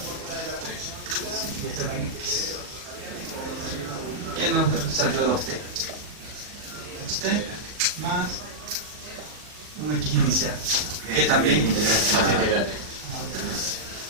Y esto es en x. ¿Qué nos salió 2t? 2t más un x inicial. Que también integral.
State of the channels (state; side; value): late; left; 40 ms